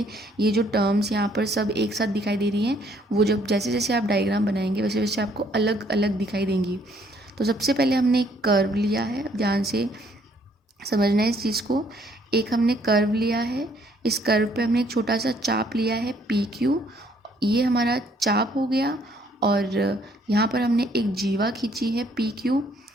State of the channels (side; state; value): both; normal; correlation 0.65